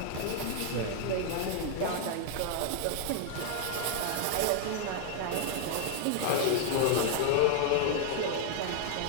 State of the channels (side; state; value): both; different; correlation 0.00